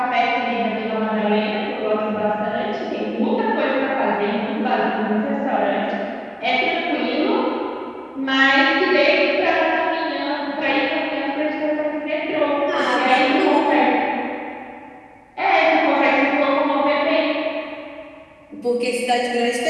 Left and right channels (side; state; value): both; identical; correlation 1.00